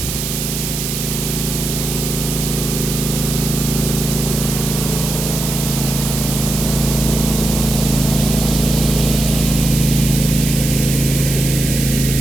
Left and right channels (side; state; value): right; noise; hiss, 4 dB below the sound